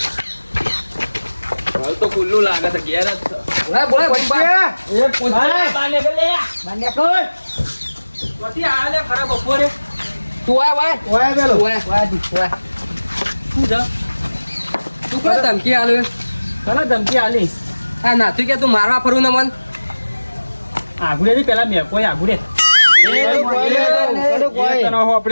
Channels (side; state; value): both; inverted; correlation -1.00